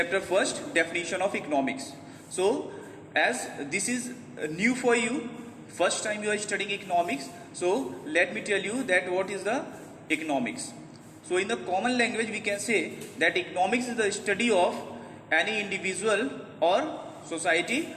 1st, definition of economics. So as this is new for you, first time you are studying economics, so let me tell you that what is the economics. So in the common language we can say that economics is the study of any individual or society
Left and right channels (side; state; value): both; identical; correlation 1.00